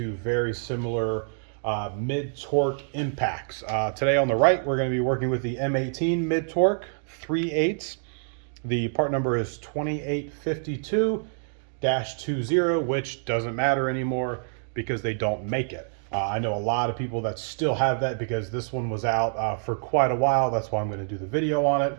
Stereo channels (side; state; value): left; silent; digital silence